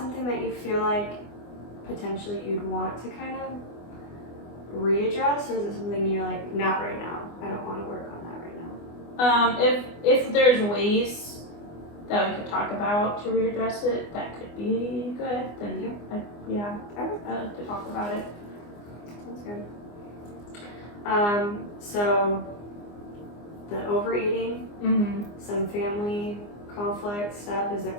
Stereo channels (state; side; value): late; right; 24 ms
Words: that you feel like potentially you'd want to kind of readdress, or is it something you're like, not right now, I don't want to work on that right now? If there's ways that we could talk about to readdress it, that could be good, then I like to talk about it. Sounds good. So the overeating, some family conflict stuff, is